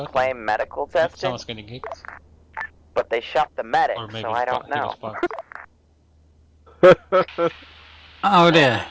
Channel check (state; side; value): identical; both; correlation 1.00